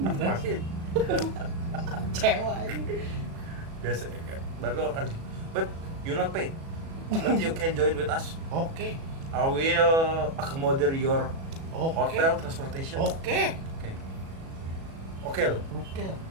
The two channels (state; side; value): late; left; 37 ms